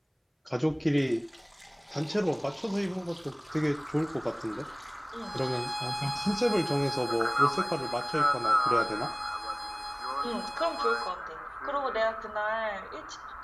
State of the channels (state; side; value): identical; both; correlation 1.00